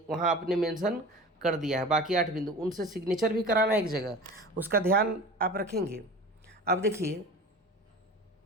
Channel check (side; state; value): both; normal; correlation 0.37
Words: वहाँ आपने मेंशन कर दिया है। बाकी 8 बिंदु उनसे सिग्नेचर भी कराना है एक जगह, उसका ध्यान आप रखेंगे। अब देखिए